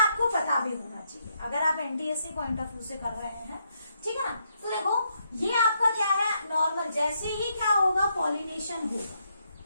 पता भी होना चाहिए अगर आप एनटीएससी पॉइंट ऑफ व्यू से कर रहे हैं। ठीक है ना, तो देखो ये आपका क्या है, नॉर्मल, जैसे ही क्या होगा, पॉलिनेशन होगा।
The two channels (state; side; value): inverted; both; correlation -0.77